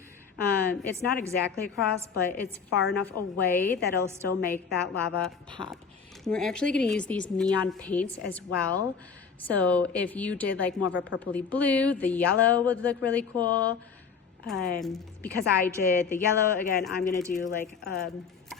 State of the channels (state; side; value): quieter; right; 6.0 dB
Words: It's not exactly across, but it's far enough away that it'll still make that lava pop. And we're actually going to use these neon paints as well. So if you did like more of a purpley blue, the yellow would look really cool. Because I did the yellow, again, I'm going to do like a